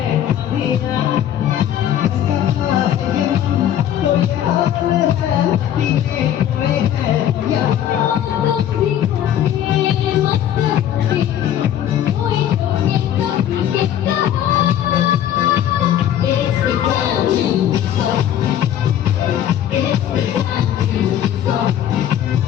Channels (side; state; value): right; quieter; 10.8 dB